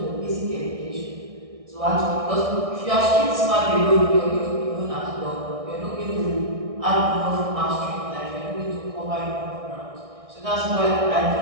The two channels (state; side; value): late; left; 1.6 ms